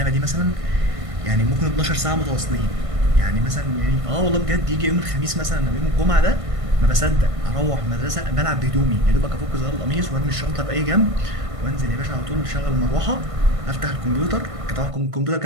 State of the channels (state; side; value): late; left; 1.5 ms